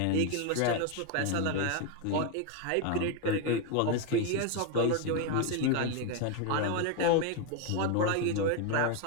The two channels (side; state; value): both; different; correlation 0.02